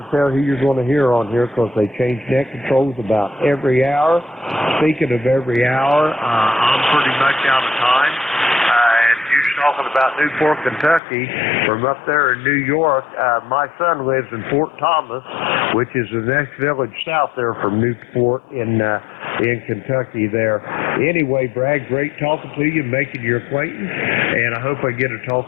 tell who you're going to hear on here because they change net controls about every hour. Speaking of every hour, I'm pretty much out of time. Talking about Newport, Kentucky, from up there in New York. My son lives in Fort Thomas, which is the next village south there from Newport in Kentucky there. Anyway, Brad, great talking to you, making your acquaintance, and I hope I get to talk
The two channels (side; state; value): right; drops out; at 11.0 s